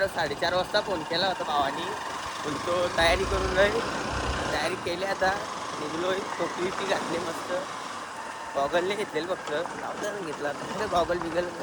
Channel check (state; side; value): identical; both; correlation 1.00